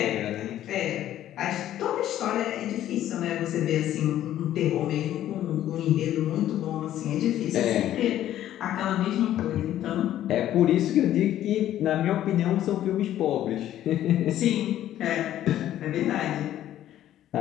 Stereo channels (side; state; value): right; quieter; 12.4 dB